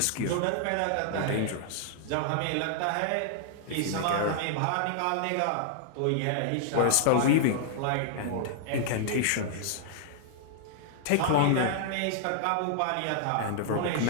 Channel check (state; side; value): different; both; correlation -0.01